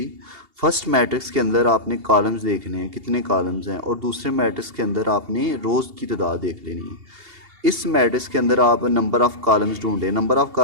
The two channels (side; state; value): left; late; 2.8 ms